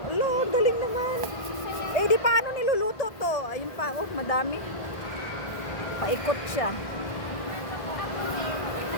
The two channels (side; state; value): right; late; 1.5 ms